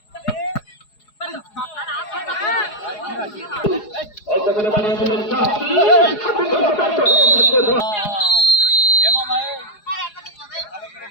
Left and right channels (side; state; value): right; late; 4.8 ms